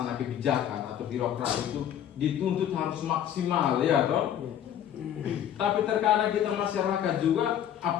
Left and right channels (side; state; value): right; quieter; 10.1 dB